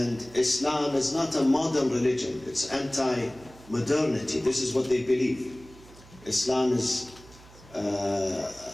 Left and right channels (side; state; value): right; noise; hum, 22 dB below the sound